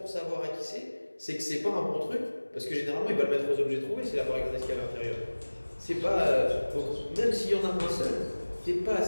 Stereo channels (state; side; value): inverted; both; correlation -1.00